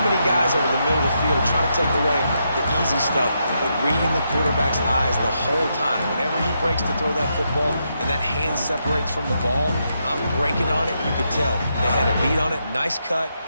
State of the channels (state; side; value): inverted; both; correlation -0.81